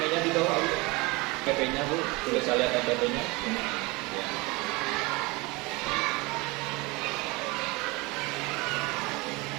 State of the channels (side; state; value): left; quieter; 24.2 dB